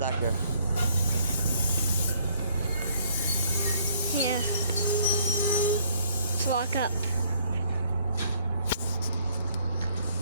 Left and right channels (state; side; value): inverted; both; correlation -0.64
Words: Yeah. Let's walk up.